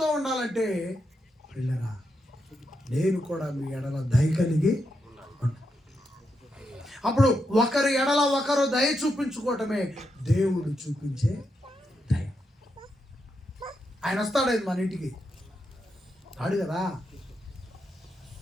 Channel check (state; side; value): normal; both; correlation 0.84